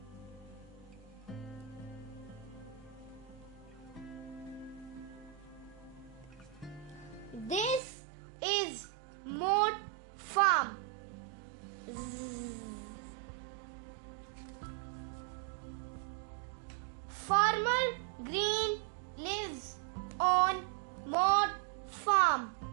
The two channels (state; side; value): drops out; left; at 7.8 s